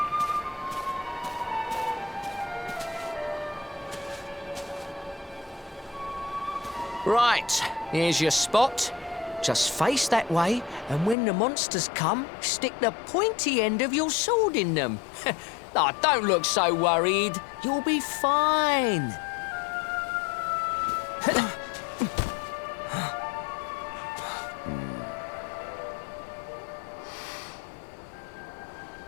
Right, here's your spot. Just face that way, and when the monsters come, stick the pointy end of your sword in them. Oh, don't look so worried. You'll be fine.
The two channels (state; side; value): drops out; right; at 11.2 s